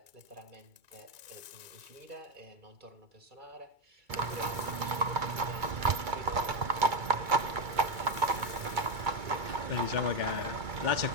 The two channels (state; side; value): late; left; 2.3 ms